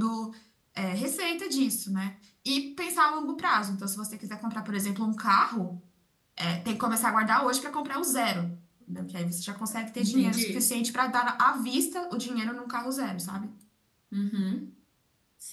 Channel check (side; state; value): both; identical; correlation 1.00